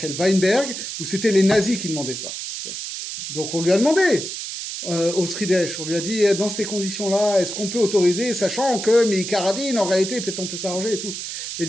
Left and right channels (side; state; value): right; noise; hiss, 6 dB below the sound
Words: Weinberg, où c'était les nazis qui demandaient ça. Donc on lui a demandé au Sridesh, on lui a dit dans ces conditions-là, est-ce qu'on peut autoriser, sachant que Meikaradin, en réalité, peut-être on peut s'arranger et tout. Il a